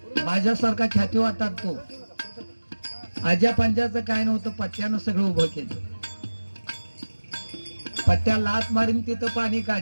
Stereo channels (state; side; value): inverted; both; correlation -1.00